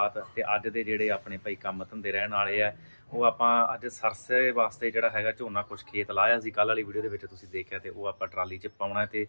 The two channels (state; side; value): inverted; both; correlation -1.00